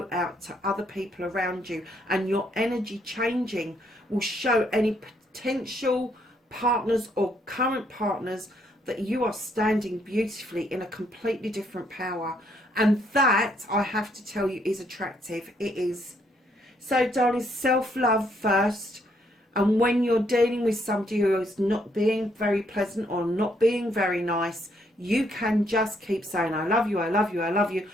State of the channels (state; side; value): normal; both; correlation 0.71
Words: out to other people around you, and your energy changing will show any potential partners or current partners that you are standing beautifully in a completely different power. And that, I have to tell you, is attractive. It is. So, darling, self-love first. And when you're dealing with somebody who is not being very pleasant or not being very nice, you can just keep saying, I love you, I love you, I love you,